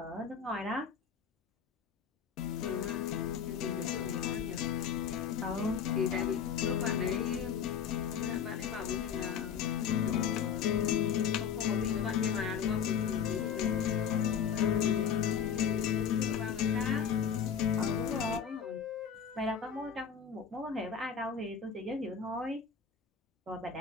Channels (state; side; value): quieter; right; 7.4 dB